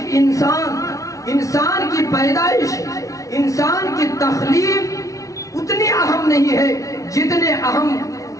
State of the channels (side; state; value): right; late; 0.16 ms